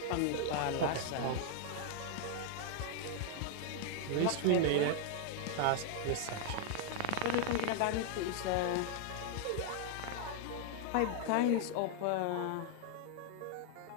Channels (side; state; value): both; different; correlation 0.00